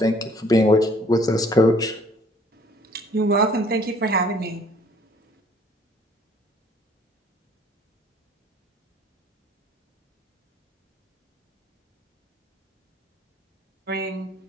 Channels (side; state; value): both; normal; correlation 0.58